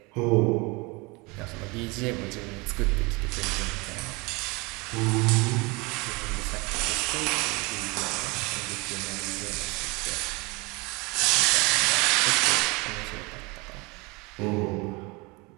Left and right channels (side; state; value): left; quieter; 26.5 dB